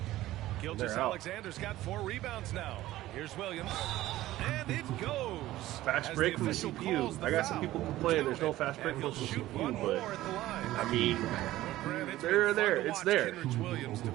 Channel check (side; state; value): left; quieter; 15.6 dB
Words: out. Gilgeous-Alexander's got 4 rebounds now. Here's Williams. And it goes. Fast As break from the official CPU. calls the I got some foul. people complaining there's no fast break And from he'll the shoot CPU, one but more at the line. I mean, Grant, it's they're been fun there. to It's watch there. Kenrich Williams